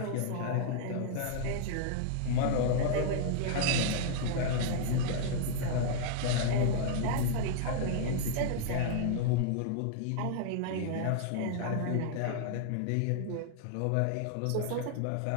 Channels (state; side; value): different; both; correlation -0.01